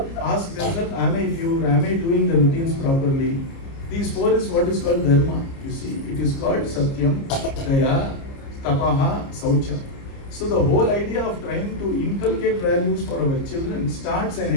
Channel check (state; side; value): late; right; 30 ms